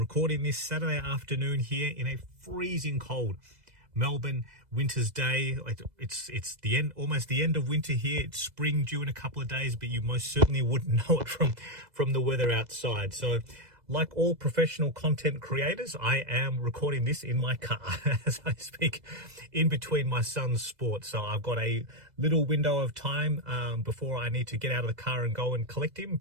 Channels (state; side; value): late; left; 2.0 ms